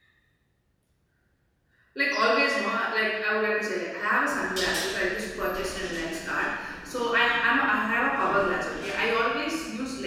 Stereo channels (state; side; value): identical; both; correlation 1.00